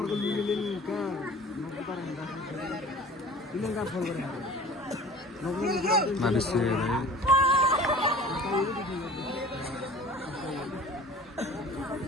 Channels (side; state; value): both; normal; correlation 0.44